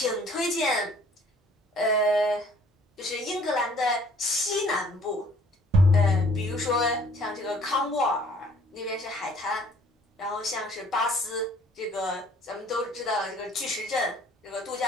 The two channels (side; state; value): both; normal; correlation 0.57